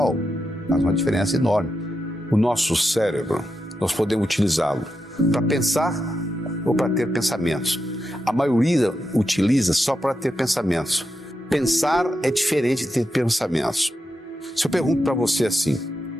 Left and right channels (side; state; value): both; normal; correlation 0.86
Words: faz uma diferença enorme. O nosso cérebro, nós podemos utilizá-lo para pensar ou para ter pensamentos. A maioria utiliza só para ter pensamentos. Pensar é diferente de ter pensamentos. Se eu pergunto para você assim,